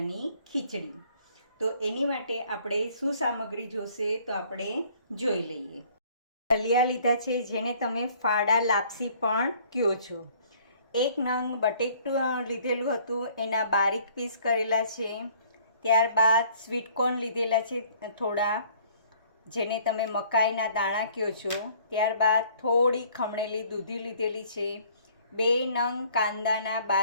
ખીચડી. તો એની માટે આપણે શું સામગ્રી જોશે તો આપણે જોઈ લઈએ. દલિયા લીધા છે, જેને તમે ફાડા લાપસી પણ કહો છો. એક નંગ બટેટું લીધેલું હતું, એના બારીક પીસ કરેલા છે. ત્યારબાદ સ્વીટકોર્ન લીધેલા છે થોડા, જેને તમે મકાઈના દાણા કહો છો. ત્યારબાદ થોડી ખમણેલી દૂધી લીધેલી છે. 2 નંગ કાંદાના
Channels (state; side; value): inverted; both; correlation -0.57